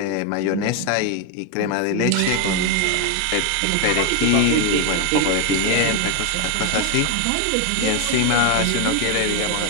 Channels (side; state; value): both; different; correlation 0.01